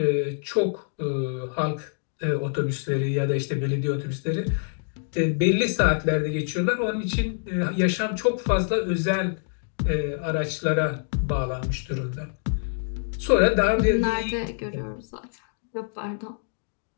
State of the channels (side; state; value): right; silent; digital silence